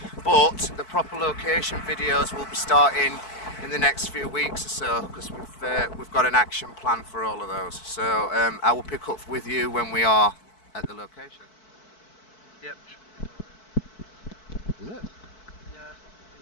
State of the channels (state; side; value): late; right; 4.6 ms